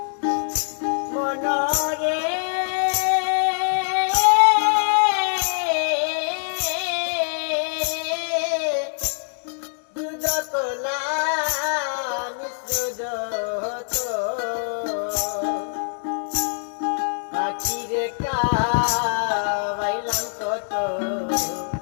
মনরে বাইলাম কত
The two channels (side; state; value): right; silent; digital silence